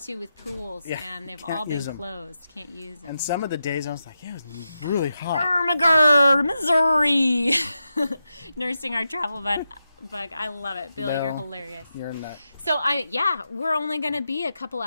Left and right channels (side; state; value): both; inverted; correlation -0.88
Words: with pools, and they've all been closed. Can't use them. And some of the days I was like, it was really hot. Ermagerd, Missouri. Nursing our travel bug. I love it. Bill, you're hilarious. You're a nut. So, we're only going to be a couple